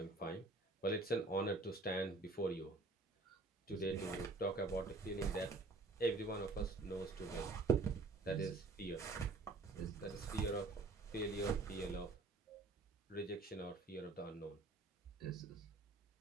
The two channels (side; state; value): left; quieter; 3.4 dB